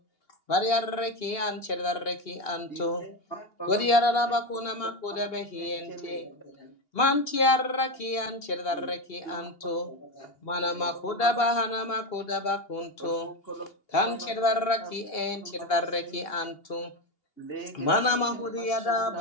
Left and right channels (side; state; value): right; late; 2.8 ms